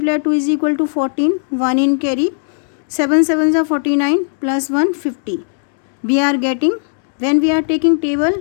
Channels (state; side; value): silent; right; digital silence